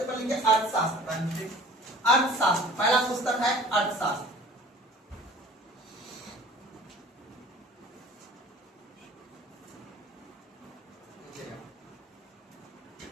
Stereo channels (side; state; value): both; normal; correlation 0.47